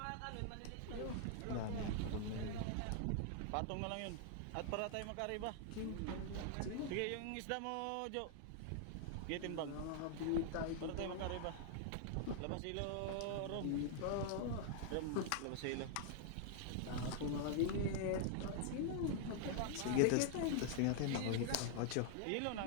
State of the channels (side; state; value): both; different; correlation 0.00